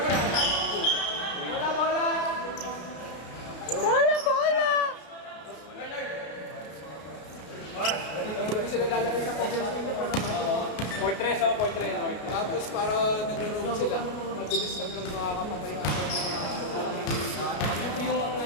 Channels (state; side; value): late; right; 33 ms